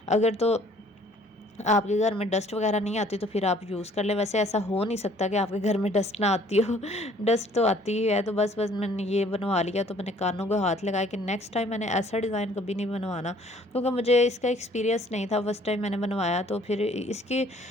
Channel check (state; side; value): normal; both; correlation 0.58